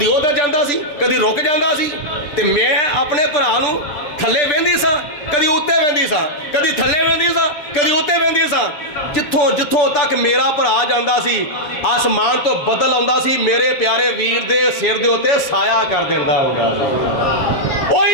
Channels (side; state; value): right; late; 7.3 ms